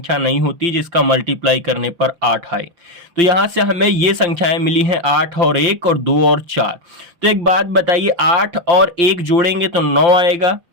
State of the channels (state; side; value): late; left; 5.8 ms